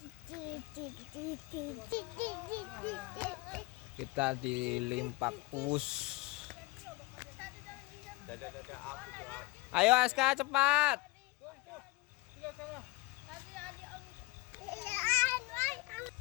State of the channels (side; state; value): right; quieter; 21.6 dB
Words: Kita di Limpak Pus. Ayo Aska cepat.